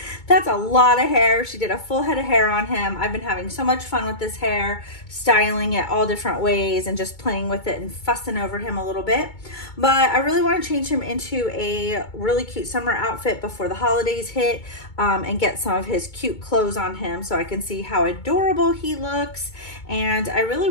that's a lot of hair. She did a full head of hair on him. I've been having so much fun with this hair, styling it all different ways and just playing with it and fussing over him a little bit. But I really want to change him into a really cute summer outfit before the holidays hit and get some of his cute clothes on him so I can see how adorable he looks. And I really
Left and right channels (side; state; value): right; late; 2.2 ms